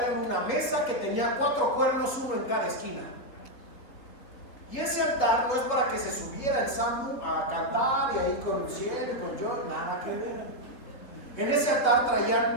era una mesa que tenía 4 cuernos, uno en cada esquina. Y ese altar no es para que se subiera el Sambu a cantar y ahí con el cielo y con yo, nada que ver. En ese altar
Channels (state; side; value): late; right; 4.0 ms